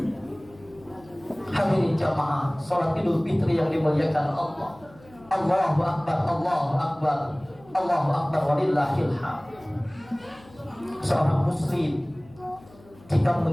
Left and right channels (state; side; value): noise; left; hum, 24 dB below the sound